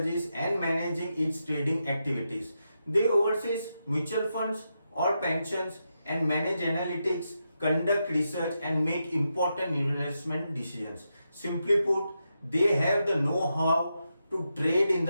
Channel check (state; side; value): inverted; both; correlation -0.86